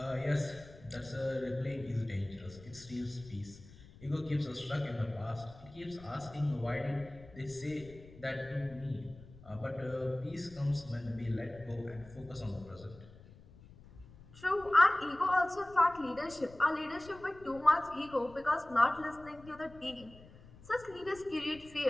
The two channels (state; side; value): noise; left; rumble, 20 dB below the sound